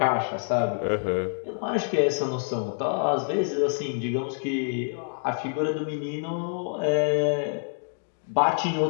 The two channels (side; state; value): right; silent; digital silence